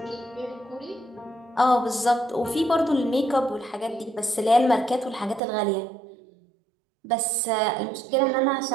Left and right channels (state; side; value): drops out; left; at 5.4 s